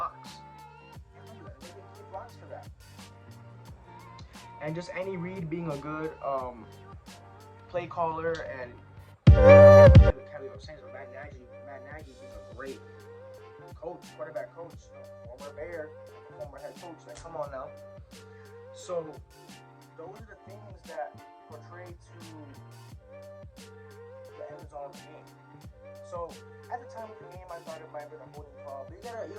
They're making key blocks for that. And just Andy Reid being a good play caller and Matt Nagy being a great coach, quarterback coach, former Bear, former head coach. Like, come on now. So those are the things that portray to the end result of the game. So at the time of the game, I thought it might have been a holding call, but you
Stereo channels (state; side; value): identical; both; correlation 1.00